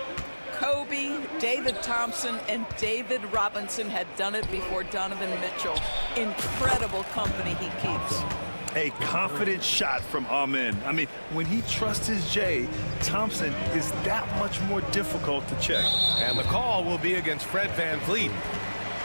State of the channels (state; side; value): inverted; both; correlation -1.00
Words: Kobe, David Thompson, and David Robinson had done it before Donovan Mitchell. Incredible company he keeps. A confident shot from Amen. I mean, when he trusts his J, Thompson is that much more difficult to check. And the call will be against Fred VanVleet.